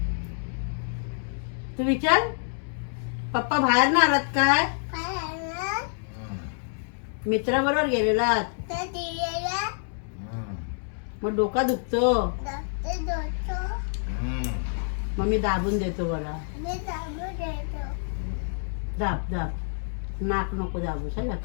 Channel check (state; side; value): silent; right; digital silence